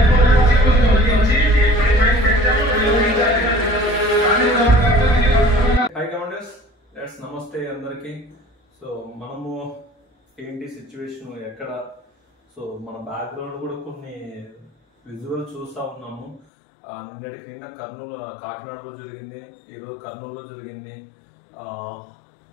కమాండర్స్, నమస్తే అందరికి. సో మనము ఏంటి సిచ్యువేషన్ ఎక్కడ, సో మన బ్యాక్గ్రౌండ్ కూడా కొన్ని విజువల్ చూస్తూ ఉన్నాము. నిన్నటికి నిన్న కాకినాడలో జరిగింది, ఈరోజు కర్నూలులో జరిగింది.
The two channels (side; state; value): right; drops out; at 16.4 s